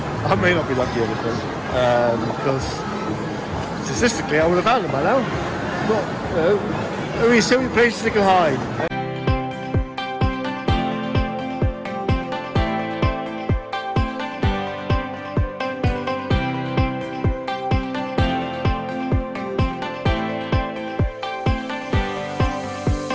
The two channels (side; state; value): both; identical; correlation 1.00